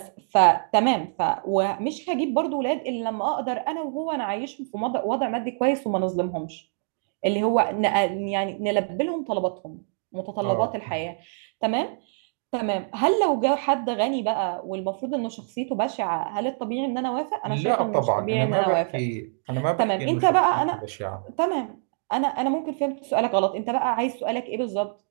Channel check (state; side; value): silent; left; digital silence